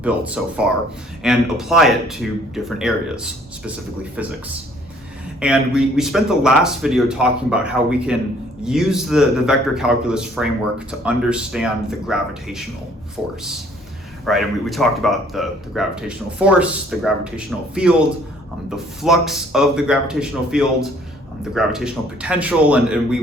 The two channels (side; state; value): both; normal; correlation 0.59